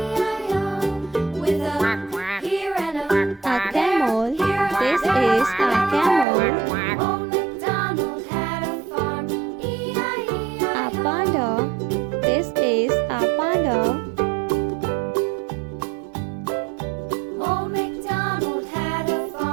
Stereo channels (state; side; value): drops out; left; at 6.2 s